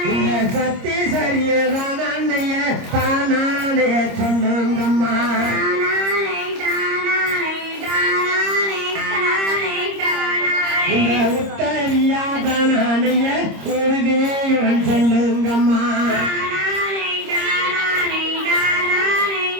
சத்தி சரியதான் அண்ணைய தானானே சொல்லுங்கம்மா இந்த உத்தரியாதானைய உறுதியவன் சொல்லுங்கம்மா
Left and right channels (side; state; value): left; late; 26 ms